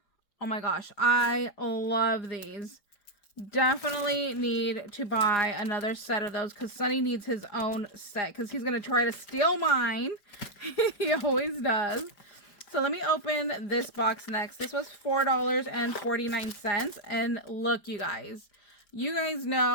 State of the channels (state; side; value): late; right; 4.9 ms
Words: Oh my gosh, I love these. Definitely need to buy another set of those because Sunny needs his own set because he's going to try to steal mine. He always does. So let me open this box next. This was $4.49. And look, you guys